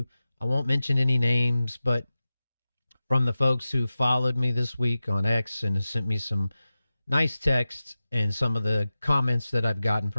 I won't mention any names, but from the folks who followed me this week on X and have sent me some nice texts and some of the comments that I've gotten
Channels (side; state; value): both; inverted; correlation -0.95